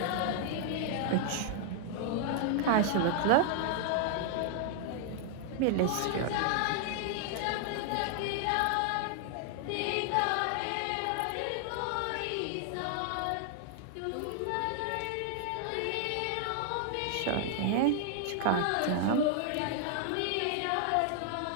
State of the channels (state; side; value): different; both; correlation 0.00